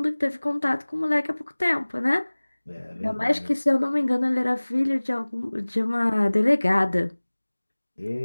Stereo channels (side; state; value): both; inverted; correlation -1.00